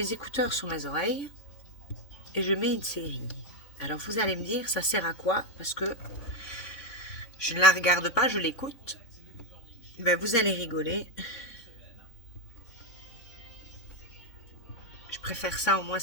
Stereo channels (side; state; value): right; late; 3.6 ms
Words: écouteurs sur mes oreilles. Et je mets une série. Alors vous allez me dire, ça sert à quoi? Parce que je ne la regarde pas, je l'écoute. Ben, vous allez rigoler. Je préfère ça, au moins